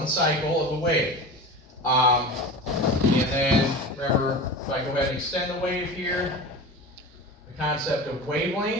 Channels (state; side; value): normal; both; correlation 0.31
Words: cycle of a wave. And then remember, if I go ahead and extend the wave here, the concept of